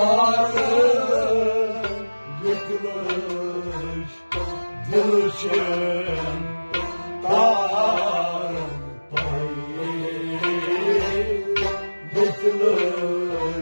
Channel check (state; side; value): inverted; both; correlation -1.00